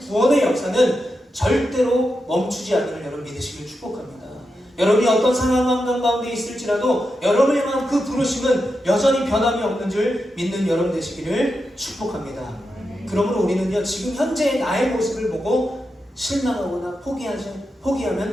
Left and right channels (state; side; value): normal; both; correlation 0.88